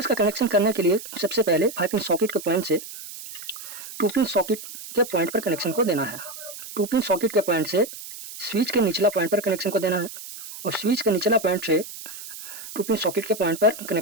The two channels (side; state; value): right; noise; hiss, 12 dB below the sound